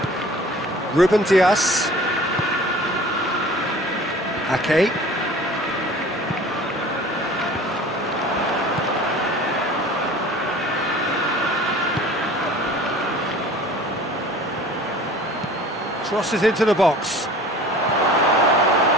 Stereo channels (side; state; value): both; normal; correlation 0.44